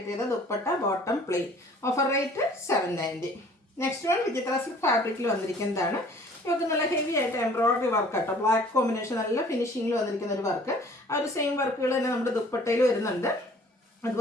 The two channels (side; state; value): both; normal; correlation 0.53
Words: ചെയ്ത dupatta, bottom plain. Offer rate 790. Next one Vichitra silk ഫാബ്രിക്കിൽ വന്നിരിക്കുന്നതാണ്. യോക്ക് നല്ല ഹെവി ആയിട്ട് എംബ്രോയ്ഡറി വർക്ക് കേട്ടോ. ബ്ലാക്ക് കോമ്പിനേഷൻ നല്ല ഫിനിഷിങ്ങിൽ വന്നിരിക്കുന്ന ഒരു വർക്ക്. ആ ഒരു സെയിം വർക്കുകൾ തന്നെ നമ്മുടെ ദുപ്പട്ടയിൽ വരുന്നുണ്ട്.